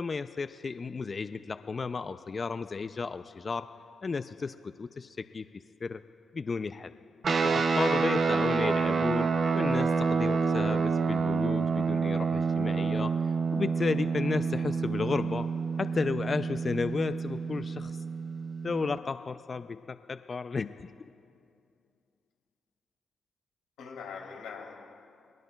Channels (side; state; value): both; normal; correlation 0.86